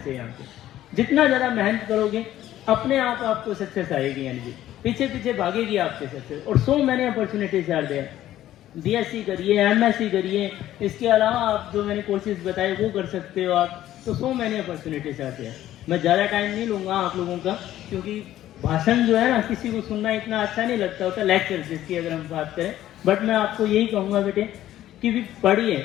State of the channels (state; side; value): quieter; right; 13.2 dB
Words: से, यहाँ पे जितना ज़्यादा मेहनत करोगे अपने आप आपको सक्सेस आएगी, यानी कि पीछे पीछे भागेगी आपके सक्सेस। और so many opportunities are there. BSc करिए, MSc करिए, इसके अलावा आप जो मैंने कोर्सेज बताए वो कर सकते हो आप। तो सो मैनी अपॉर्चुनिटीज आते हैं। मैं ज़्यादा टाइम नहीं लूँगा आप लोगों का, क्योंकि भाषण जो है ना किसी को सुनना इतना अच्छा नहीं लगता होता, लेक्चर जिसकी अगर हम बात करें। बट मैं आपको यही कहूँगा बेटे कि भी पढ़िए,